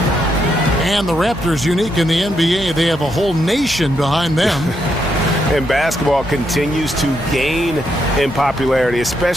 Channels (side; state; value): both; normal; correlation 0.79